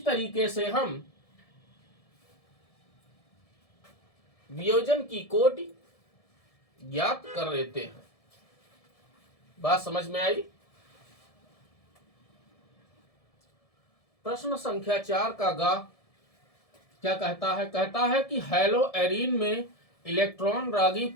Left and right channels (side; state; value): right; late; 1.7 ms